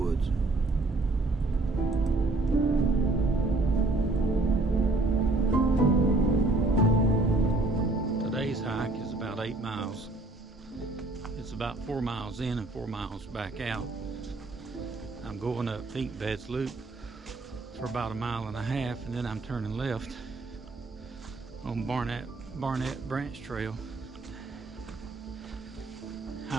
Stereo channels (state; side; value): quieter; left; 3.1 dB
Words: Today's hike is about 8 miles. It's about 4 miles in and 4 miles back out. I'm going up Pink Beds Loop for about 1.5 miles, and then I'm turning left on Barnett Branch Trail,